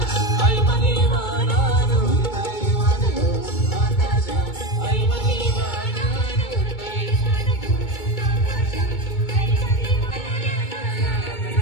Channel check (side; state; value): right; late; 2.2 ms